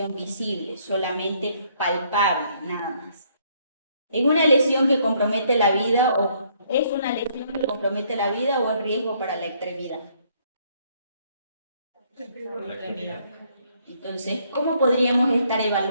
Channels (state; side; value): inverted; both; correlation -0.67